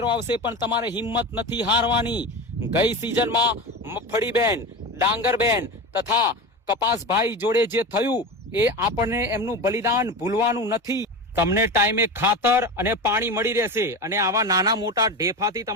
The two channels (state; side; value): normal; both; correlation 0.25